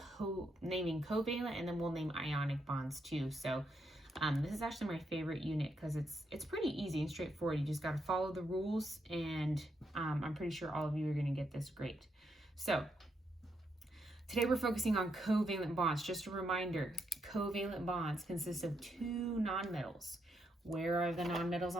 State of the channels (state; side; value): normal; both; correlation 0.79